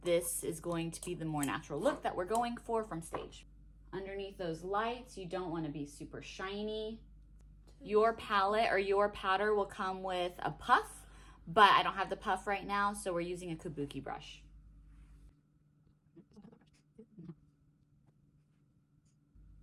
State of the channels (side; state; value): both; identical; correlation 1.00